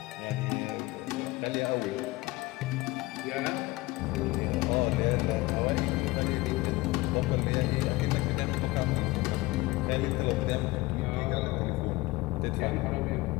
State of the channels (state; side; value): quieter; right; 20.6 dB